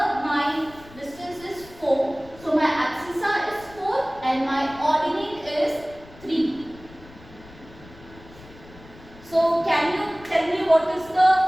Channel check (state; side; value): noise; left; rumble, 21 dB below the sound